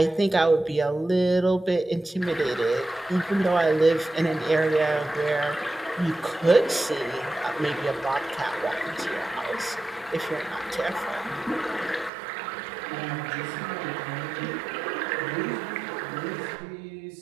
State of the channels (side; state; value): left; drops out; at 12.1 s